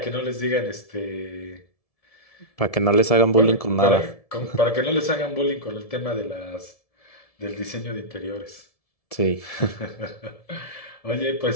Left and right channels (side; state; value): right; late; 1.7 ms